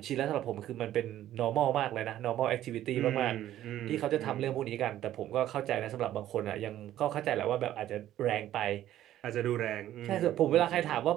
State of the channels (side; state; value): left; quieter; 12.8 dB